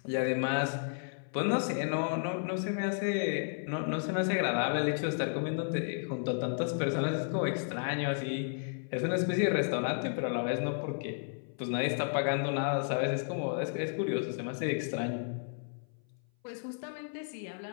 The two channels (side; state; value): right; silent; 56 dB below the other